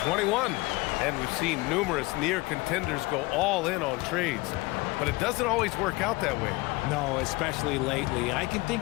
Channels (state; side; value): quieter; right; 22.9 dB